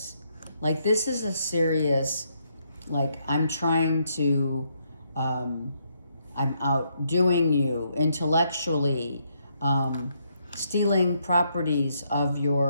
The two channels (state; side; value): inverted; both; correlation -0.75